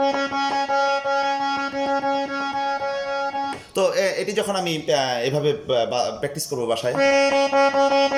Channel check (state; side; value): identical; both; correlation 1.00